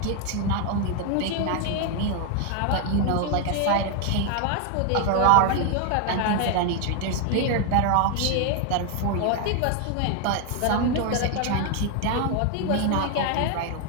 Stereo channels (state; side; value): different; both; correlation 0.01